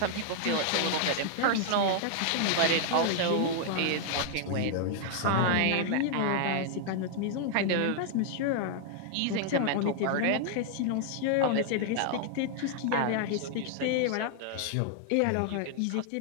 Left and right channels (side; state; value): both; different; correlation 0.00